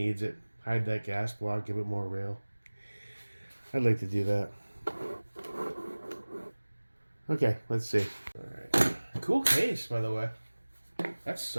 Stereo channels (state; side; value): inverted; both; correlation -1.00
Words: it. Hide that gas block, give it more rail. I'd like to do that. Okay, let's see. Alright. Cool case, by the way. That's